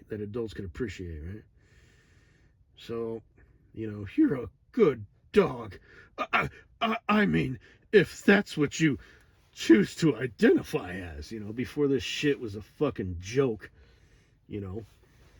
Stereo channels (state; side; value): identical; both; correlation 1.00